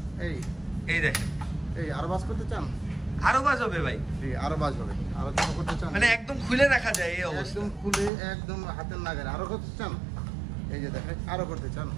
এই দেখেন, এই আরো বাস করতে চান? আরো বাজ হবে ভাই? জি আরো বাস হবে। আরো কি করতে চান? মানে একদম খুলে রাখা যায় এই অবস্থা? একদম খুলে, একদম হাতের নাগারে। আরো করতে চান? এই যে দেখেন, আরো করতে চান?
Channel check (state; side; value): drops out; left; at 8.1 s